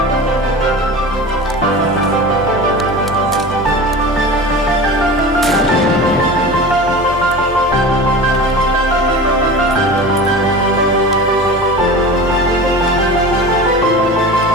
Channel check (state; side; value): normal; both; correlation 0.33